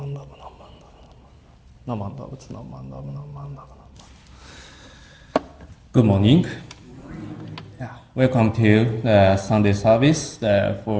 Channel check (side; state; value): both; identical; correlation 1.00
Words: morning. Yeah, welcome to the Sunday service